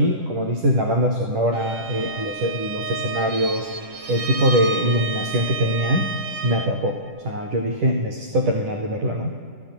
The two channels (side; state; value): left; late; 10 ms